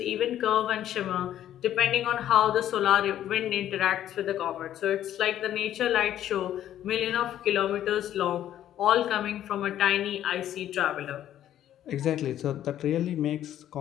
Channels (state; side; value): quieter; right; 11.6 dB